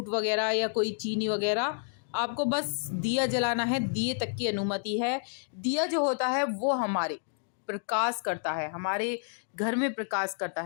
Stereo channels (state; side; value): silent; right; digital silence